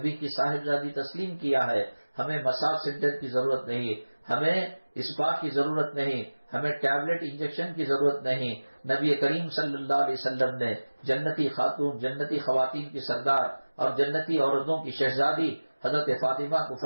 کی صاحبزادی تسلیم کیا ہے، ہمیں مساج سینٹر کی ضرورت نہیں، ہمیں اسپا کی ضرورت نہیں، ہمیں ٹیبلٹ انجیکشن کی ضرورت نہیں۔ نبی کریم صلی اللہ علیہ وسلم نے جنتی خاتون، جنتی خواتین کی سردار اور جنتی عورتوں کی شہزادی حضرت فاطمہ کو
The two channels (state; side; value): inverted; both; correlation -1.00